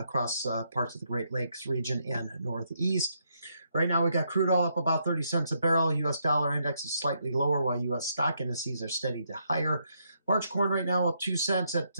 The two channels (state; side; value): inverted; both; correlation -0.77